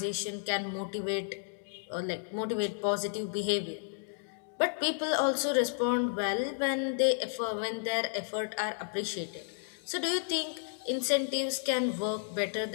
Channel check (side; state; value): right; silent; digital silence